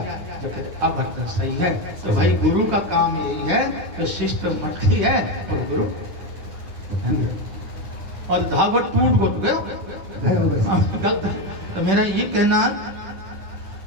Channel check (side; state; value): left; late; 10 ms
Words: तो फिर अब बर्तन सही है। तो भाई गुरु का काम यही है तो शिष्ट मटकी है और गुरु और धागा टूट गया गलत। तो मेरा ये कहना